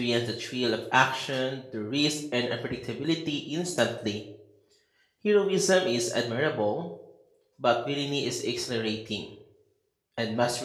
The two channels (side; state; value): both; identical; correlation 1.00